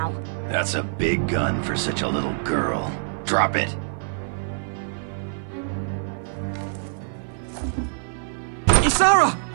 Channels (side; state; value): left; silent; 57 dB below the other